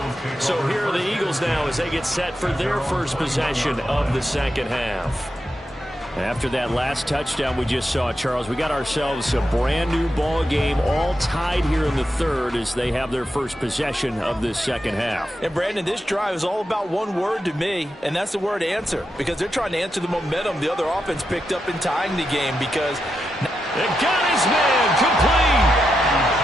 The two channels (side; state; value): both; normal; correlation 0.86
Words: So here are the Eagles now as they get set for their first possession of the second half. After that last touchdown we just saw, Charles, we got ourselves a brand new ball game, all tied here in the 3rd as they have their first possession of this second half. And Brandon, this drive is all about one word to me, and that's the word answer, because they're trying to answer the momentum the other offense picked up in tying the game, because they got his man complete.